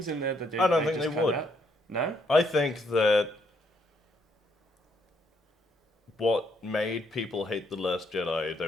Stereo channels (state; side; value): normal; both; correlation 0.72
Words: in there that I don't think just they cut would. out. No? I think that what made people hate The Last Jedi, there